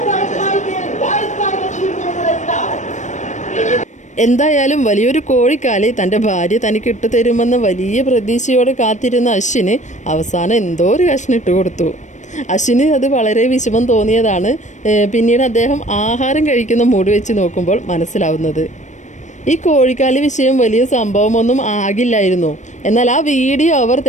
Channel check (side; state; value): right; late; 0.35 ms